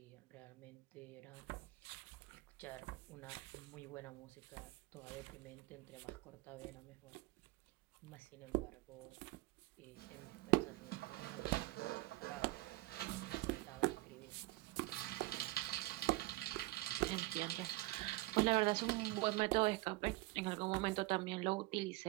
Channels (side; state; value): left; quieter; 20.2 dB